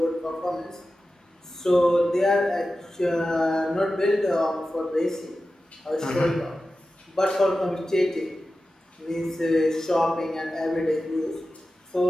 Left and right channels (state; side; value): normal; both; correlation 0.93